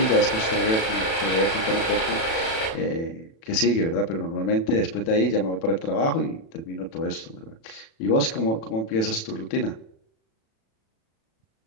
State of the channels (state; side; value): late; right; 36 ms